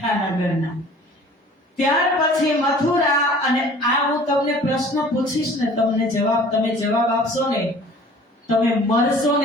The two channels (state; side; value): normal; both; correlation 0.48